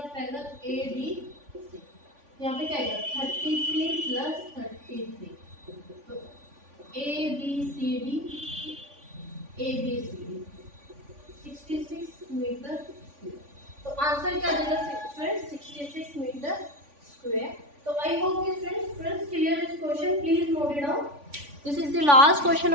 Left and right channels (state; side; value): late; left; 3.5 ms